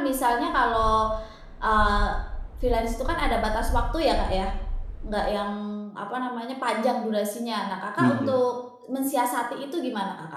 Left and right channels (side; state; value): both; identical; correlation 1.00